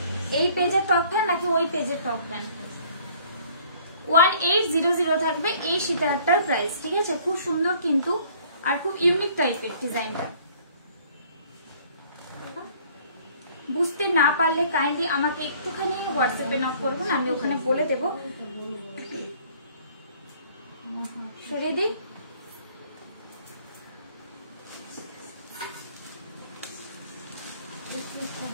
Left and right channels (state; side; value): inverted; both; correlation -0.56